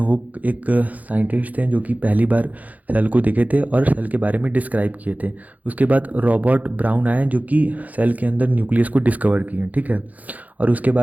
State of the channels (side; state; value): left; late; 0.077 ms